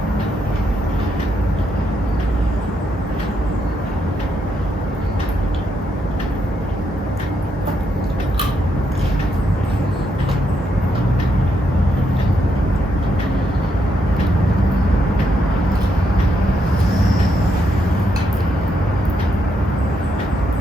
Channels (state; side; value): normal; both; correlation 0.79